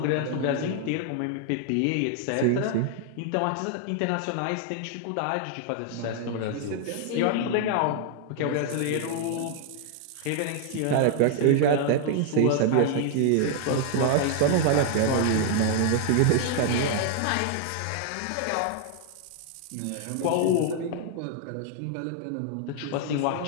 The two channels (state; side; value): different; both; correlation 0.00